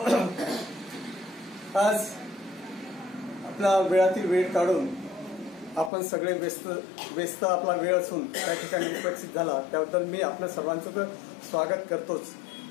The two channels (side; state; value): right; drops out; at 5.9 s